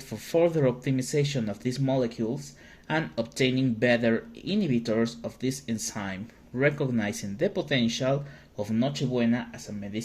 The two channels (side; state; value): both; identical; correlation 1.00